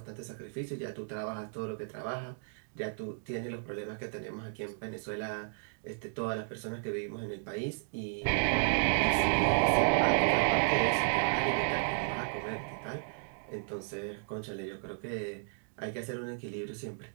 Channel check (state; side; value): silent; left; digital silence